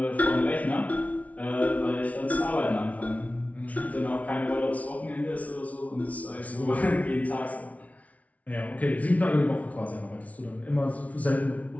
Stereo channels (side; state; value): right; late; 0.069 ms